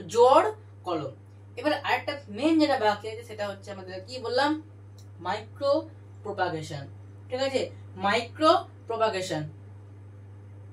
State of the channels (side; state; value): both; identical; correlation 1.00